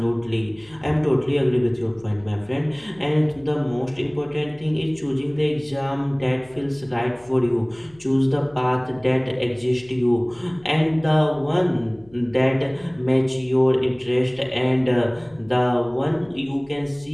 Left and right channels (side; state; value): left; noise; hum, 27 dB below the sound